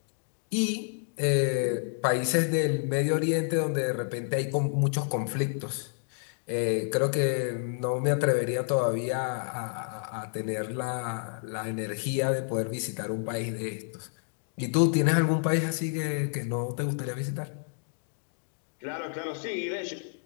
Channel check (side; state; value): right; silent; 58 dB below the other